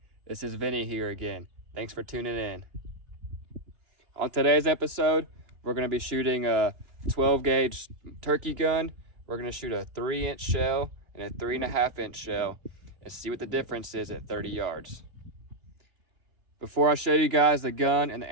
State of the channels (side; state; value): left; late; 2.9 ms